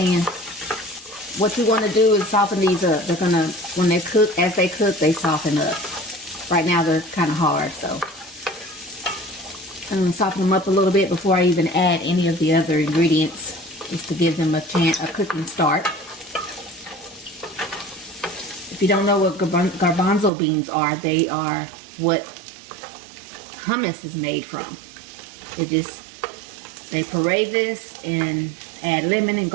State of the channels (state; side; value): drops out; left; at 20.3 s